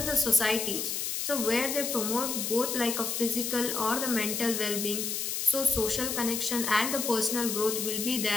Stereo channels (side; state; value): left; noise; hiss, 2 dB below the sound